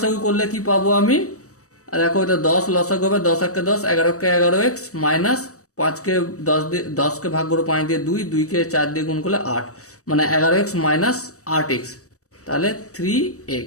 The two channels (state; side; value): late; right; 0.65 ms